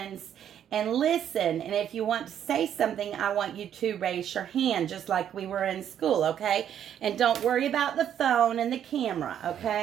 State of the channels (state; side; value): quieter; left; 9.7 dB